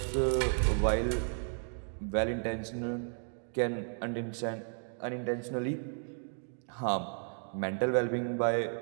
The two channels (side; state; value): left; silent; 55 dB below the other